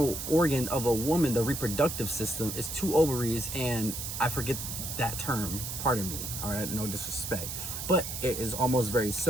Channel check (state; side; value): noise; right; hiss, 6 dB below the sound